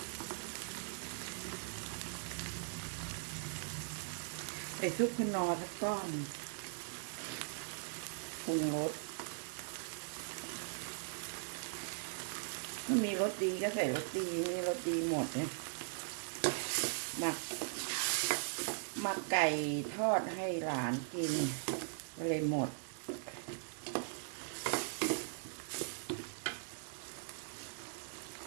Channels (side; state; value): left; silent; 51 dB below the other